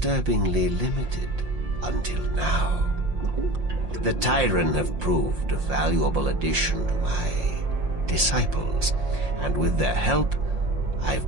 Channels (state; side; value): late; left; 5.7 ms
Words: limited until now. The Tyrant have proved a valuable addition to my disciples, and with their help, I've